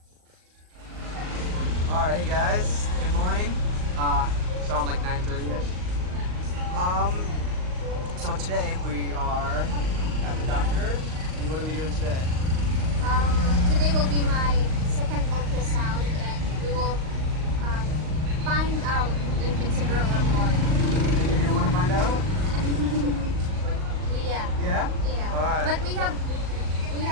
All right, hey guys, good morning. It's around like 9:30ish. So today we are at the doctor, and what are we doing today? Today will be my second ultrasound, and we will find out if it's a girl or boy. And you do want to find out? Yeah. Yeah? Yeah. All right. But we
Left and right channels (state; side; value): late; left; 38 ms